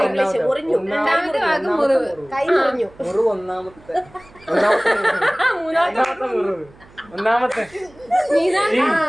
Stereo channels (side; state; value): right; noise; hum, 26 dB below the sound